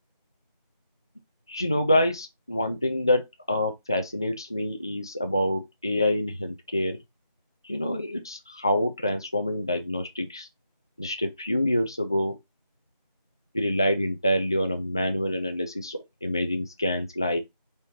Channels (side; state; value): both; inverted; correlation -0.82